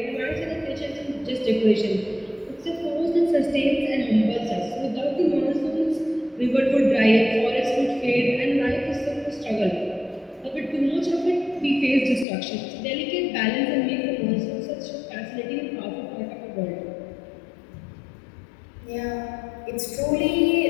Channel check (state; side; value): drops out; right; at 12.2 s